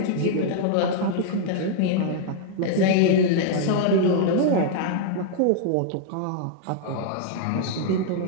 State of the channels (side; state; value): both; different; correlation -0.01